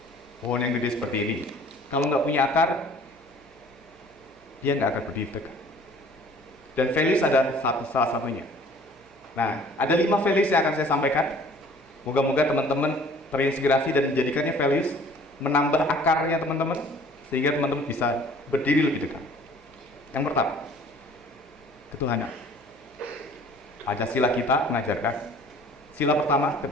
yang gede seperti ini, kalau nggak punya akar, dia nggak akan berdiri tegak. Dan values ada salah satunya. Nah, ada 5 values yang akan saya sampaikan. Moga-moga teman-teman terinspirasi dan menjadikannya values, menambah akarnya teman-teman, sehingga teman-teman bisa berdiri lebih dekat. Yang pertama, ketuhanan. Pancasila kita mengajarkan sila pertama,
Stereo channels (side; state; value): right; noise; hum, 29 dB below the sound